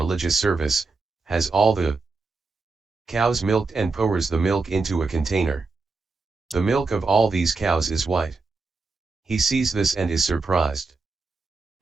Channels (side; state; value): left; quieter; 3.9 dB